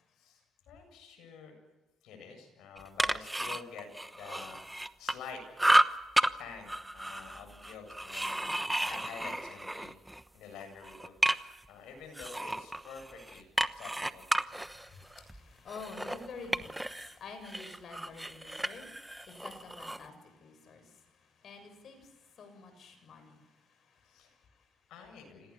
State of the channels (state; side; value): normal; both; correlation 0.98